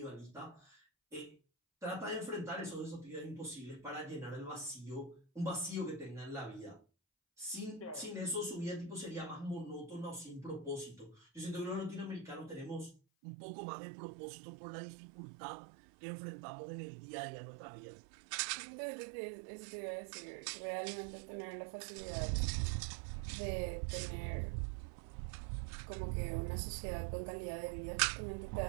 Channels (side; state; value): left; drops out; at 13.0 s